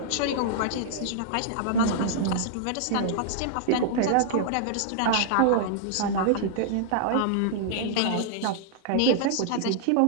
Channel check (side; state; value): both; different; correlation -0.01